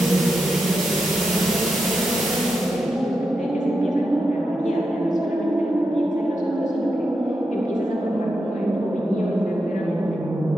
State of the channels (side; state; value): both; normal; correlation 0.87